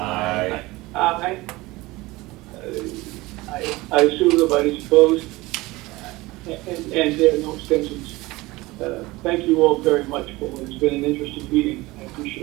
Aye. I assume nobody's opposed, and there are no abstentions. Thank you all very much for it. It's been an interesting meeting. I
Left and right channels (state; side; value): quieter; left; 20.7 dB